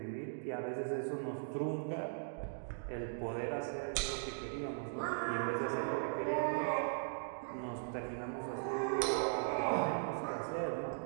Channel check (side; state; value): left; silent; digital silence